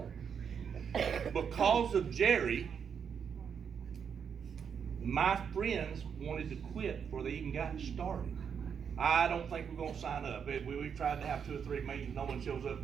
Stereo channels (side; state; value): left; quieter; 7.1 dB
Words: Because of Jerry, my friends wanted to quit before they even got started. I don't think we're going to sign up. We've tried to have 2 or 3 meetings. No one shows up.